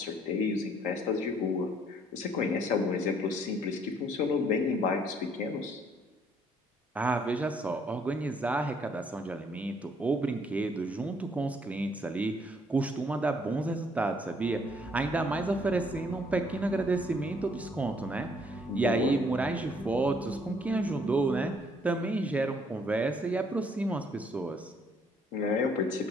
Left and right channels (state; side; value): normal; both; correlation 0.65